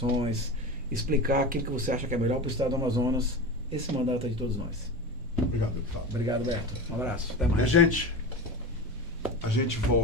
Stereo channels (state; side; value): normal; both; correlation 0.27